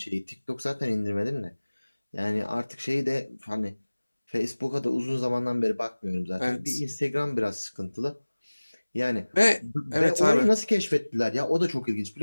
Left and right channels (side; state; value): both; inverted; correlation -1.00